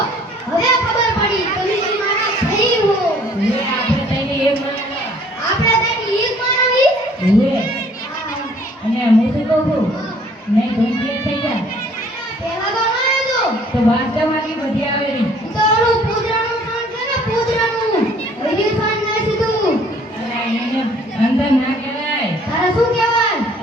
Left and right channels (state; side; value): normal; both; correlation 0.57